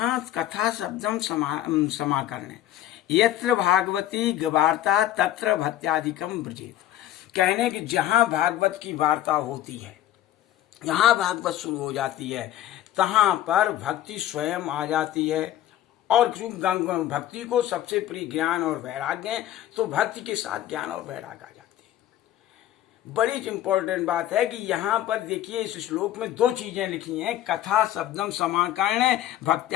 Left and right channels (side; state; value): right; quieter; 12.8 dB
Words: कथा शब्दम समाकर्णे, यत्र भागवती वार्ता तत्र भक्त्यादिकम ब्रजेत। कहने कि जहां भागवत की वार्ता होती है, जहां भागवत शुरू हो जाती है, तहां पर भक्ति स्वयं आ जाती है। और भक्ति को सबसे प्रिय ज्ञान और वैराग्य है, तो भक्ति के साथ ज्ञान और वैराग्य आ जाती है। बड़ी इंपॉर्टेंट बात है कि यहाँ पर देखिए इस श्लोक में दो चीजें लिखी हैं, कथा शब्दम समाकर्णे